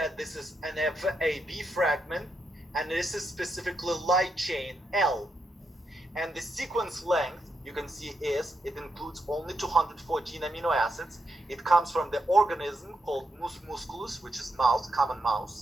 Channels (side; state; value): both; normal; correlation 0.82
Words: this is an FAB fragment, and this is specifically light chain L. And the sequence length, you can see, is it includes only 214 amino acids. It comes from the organism called mus musculus, which is mouse, common